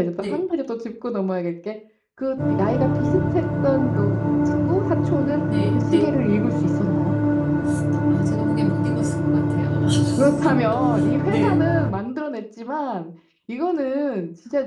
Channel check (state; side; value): identical; both; correlation 1.00